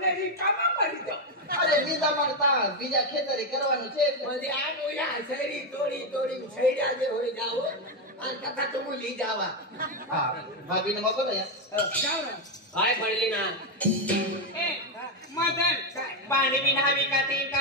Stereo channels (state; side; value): normal; both; correlation 0.06